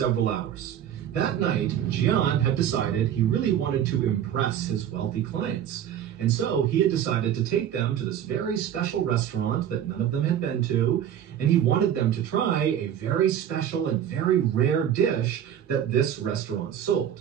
hours. That night, Jian had decided he really wanted to impress his wealthy clients. And so he had decided to take them to this very special restaurant that none of them had been to, and he wanted them to try a very special and very rare dish that this restaurant sold.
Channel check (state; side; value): quieter; left; 10.0 dB